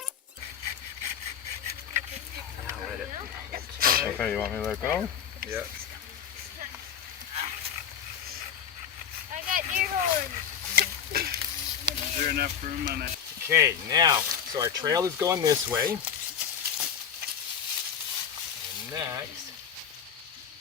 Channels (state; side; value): quieter; right; 8.1 dB